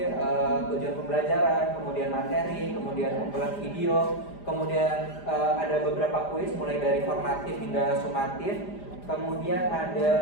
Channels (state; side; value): late; right; 5.0 ms